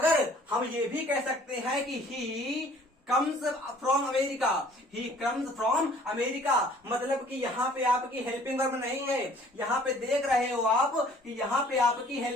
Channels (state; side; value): normal; both; correlation 0.55